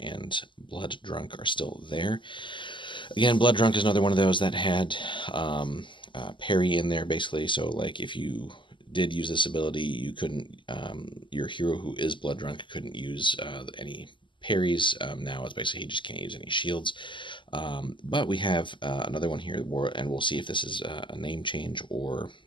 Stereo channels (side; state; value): right; late; 0.24 ms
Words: Blood Drunk are still there. Again, Blood Drunk is another one of those that had parry in there, basically. So, like, if you did use this ability, you couldn't, your hero who is Blood Drunk couldn't use any parries. Now it's basically he just can't use any shields. But we have another one here, and we'll see if this is a name change or